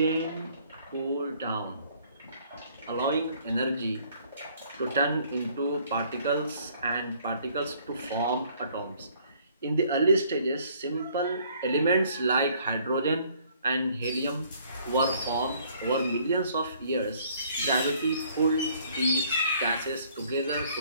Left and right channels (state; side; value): inverted; both; correlation -0.60